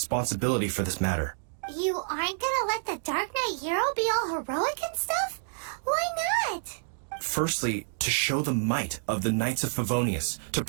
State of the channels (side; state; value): left; silent; digital silence